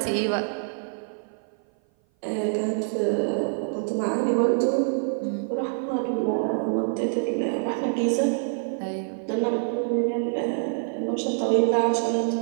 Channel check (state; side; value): silent; left; 56 dB below the other